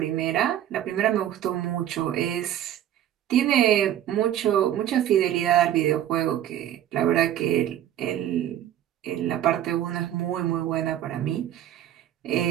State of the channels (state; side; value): quieter; left; 11.4 dB